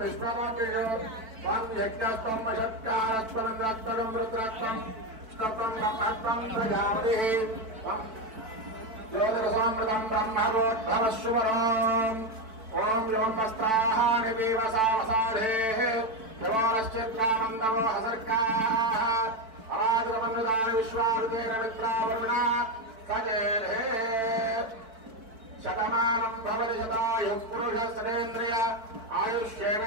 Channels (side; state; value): left; late; 4.6 ms